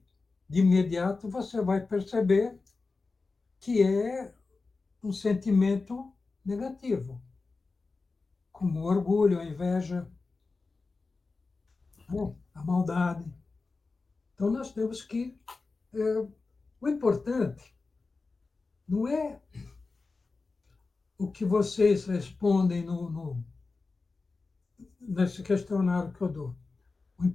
de imediato, você vai perceber que é um sentimento negativo, como o orgulho, a inveja. Bom, a maldade. Então, nós temos que... o importante não é o que vocês respondem nesse questionário que eu dou. O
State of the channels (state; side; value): quieter; right; 3.9 dB